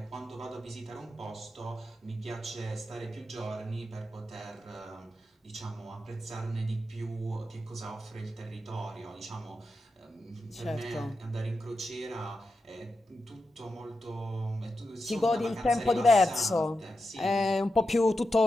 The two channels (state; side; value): normal; both; correlation 0.89